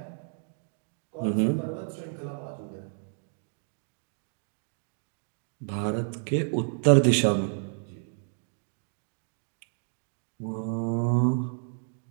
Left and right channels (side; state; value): left; silent; digital silence